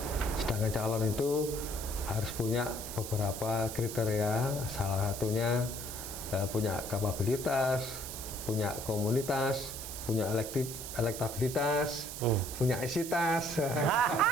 Sedangkan calon itu harus punya beberapa kriteria, salah satunya punya kapabilitas, punya komunitas, punya elektabilitas, punya isitas.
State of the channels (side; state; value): right; noise; hiss, 8 dB below the sound